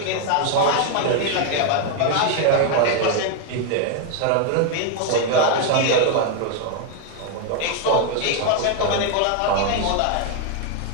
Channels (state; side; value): different; both; correlation 0.00